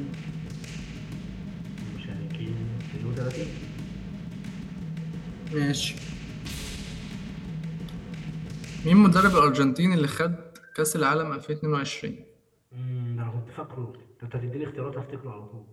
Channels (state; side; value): identical; both; correlation 1.00